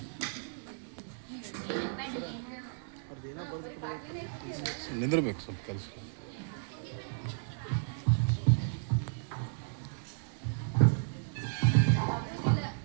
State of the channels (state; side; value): silent; left; digital silence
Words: ನಿಂದಿರ್ಬೇಕು ಸ್ವಲ್ಪ ಕೆಲಸ.